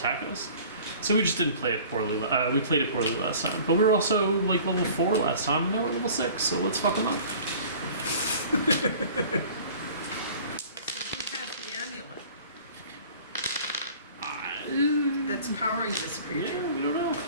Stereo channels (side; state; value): both; inverted; correlation -0.47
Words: us. So we just didn't play it poorly. We played it poorly last time, but we were also like level 4 last time, and now we're level 6. So let's fuck them up. So who has the amulet that's powering this creature? Yeah, we don't know.